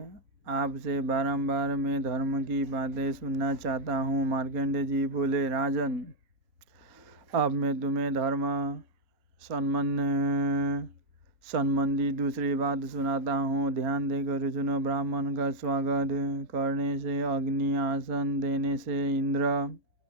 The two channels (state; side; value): late; left; 4.3 ms